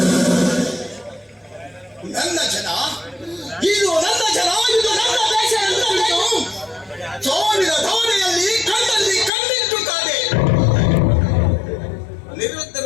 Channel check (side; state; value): right; drops out; at 9.3 s